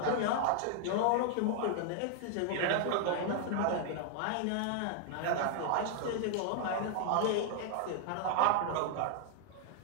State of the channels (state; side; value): different; both; correlation 0.00